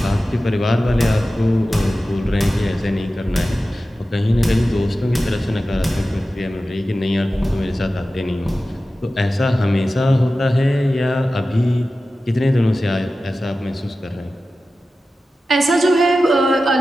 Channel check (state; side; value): normal; both; correlation 0.94